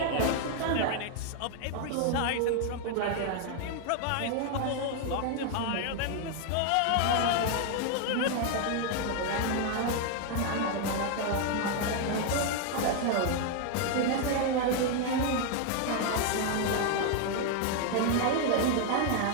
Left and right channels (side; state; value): both; different; correlation 0.00